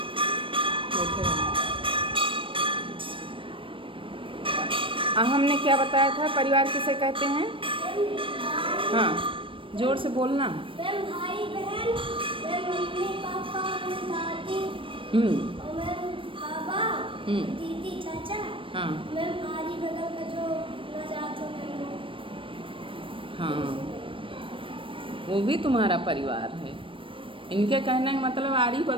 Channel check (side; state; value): left; late; 0.25 ms